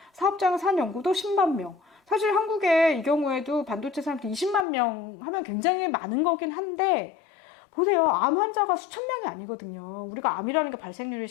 사업장을 산 연구도 10만 명. 사실 한국에 이 경우에도 반도체 산업도 20만 명 하면 굉장히 많은 거긴 한데 보세요. 암 환자가 수천 명이 아니거든요. 우리가 암이라는 게 발생률이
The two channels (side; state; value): right; drops out; at 4.7 s